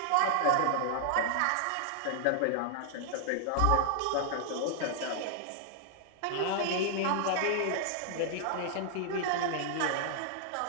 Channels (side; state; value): both; different; correlation -0.01